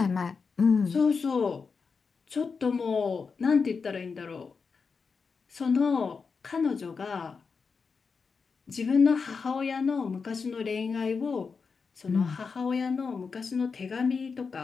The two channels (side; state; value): right; quieter; 5.2 dB